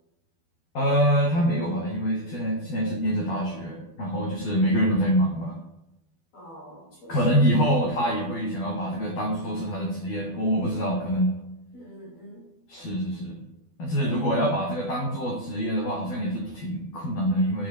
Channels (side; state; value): right; late; 12 ms